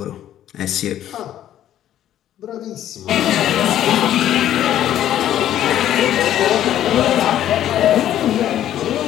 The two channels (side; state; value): right; quieter; 11.7 dB